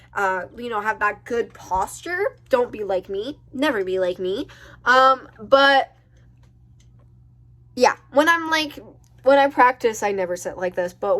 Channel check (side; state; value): both; identical; correlation 1.00